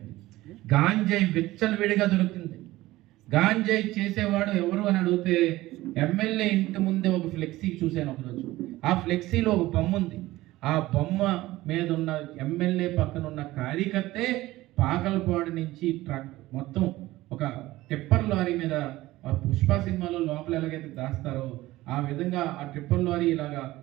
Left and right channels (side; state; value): left; quieter; 17.5 dB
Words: గాంజాయి విచ్చలవిడిగా దొరుకుతుంది. గాంజాయి చేసేవాడు ఎవరు అని అడిగితే ఎమ్మెల్యే ఇంటి ముందే ఒక ఫ్లెక్సీ చూశాను ఒకరోజు. ఆ ఫ్లెక్సీలో ఒక బొమ్మ ఉంది. ఆ బొమ్మ మీద ఉన్న ఎమ్మెల్యే పక్కన ఉన్న కార్యకర్తే పాకలపాడు నుంచి ట్రక్ మొత్తం ఒక టిప్పర్ లారీ మీద, పుష్ప సినిమాలో లోపల ఎలాగైతే దాస్తారో ఆ విధంగా ఆ టిప్పర్ లారీ ఇలాగా